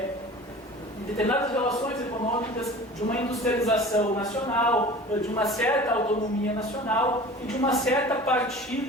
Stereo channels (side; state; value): both; normal; correlation 0.40